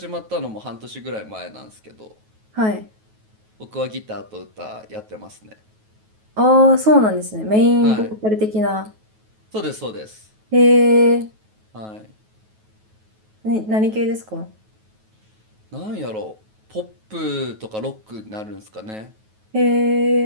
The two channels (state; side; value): late; left; 9.3 ms